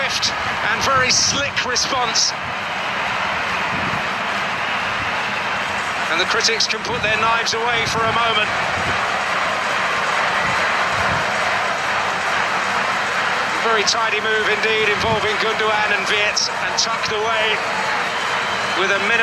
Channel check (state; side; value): identical; both; correlation 1.00